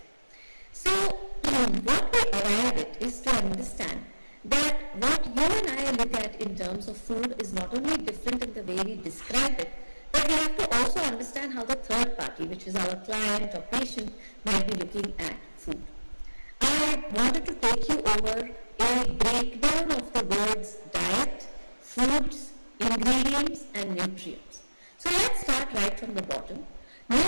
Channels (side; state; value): both; inverted; correlation -1.00